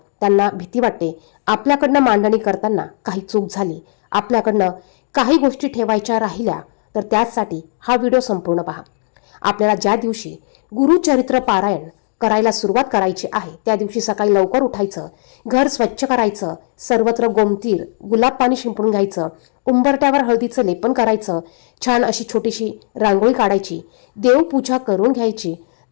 त्यांना भीती वाटते आपल्याकडनं मांडणी करताना काही चूक झाली, आपल्याकडनं काही गोष्टी ठेवायच्या राहिल्या, तर त्यासाठी हा व्हिडिओ संपूर्ण पहा. आपल्याला ज्या दिवशी गुरुचरित्र पारायण करायला सुरुवात करायची आहे त्या दिवशी सकाळी लवकर उठायचं, घर स्वच्छ करायचं, सर्वत्र गोमतीर गुलाब पाणी शिंपडून घ्यायचं, उंबरट्यावर हळदीचं लेपन करायचं, छान अशी छोटीशी रांगोळी काढायची, देवपूजा करून घ्यायची.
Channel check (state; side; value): silent; right; 67 dB below the other